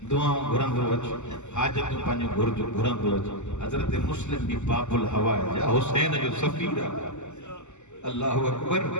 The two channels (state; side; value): late; right; 0.83 ms